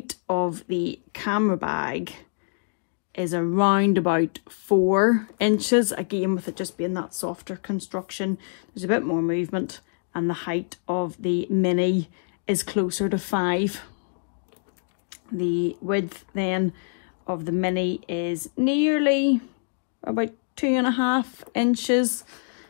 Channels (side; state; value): right; silent; digital silence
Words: of the camera bag is around about 4 inches, again with it just being that softer construction. There's a bit more movement, and the height of the mini is closer to 5. The width then of the mini is nearly about 2.5 inches,